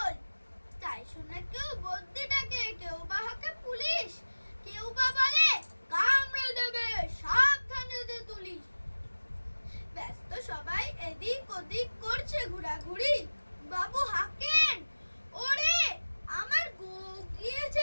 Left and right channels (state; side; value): inverted; both; correlation -1.00